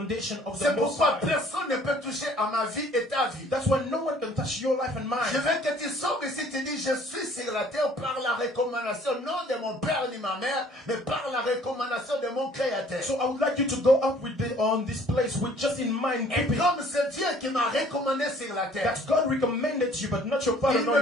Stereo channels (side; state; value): both; normal; correlation 0.56